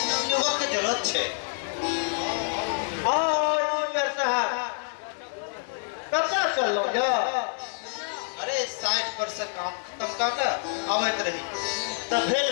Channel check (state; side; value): silent; right; 60 dB below the other